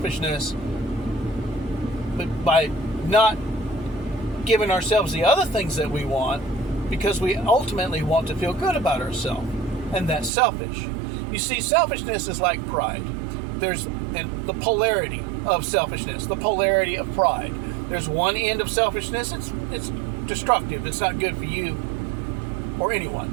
but by not giving ourselves the other things that we want, because we ultimately want to feel good about ourselves. And that's selfish. You see, selfishness is like pride. There's the polarity of selfishness, the polarity of pride. There's one end of selfishness, it's destructive, it's not good for you or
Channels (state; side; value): drops out; left; at 10.3 s